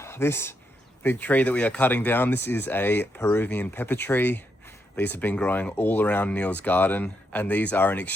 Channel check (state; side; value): normal; both; correlation 0.80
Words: this big tree that we are cutting down, this is a Peruvian pepper tree. These have been growing all around Neil's garden, and these are an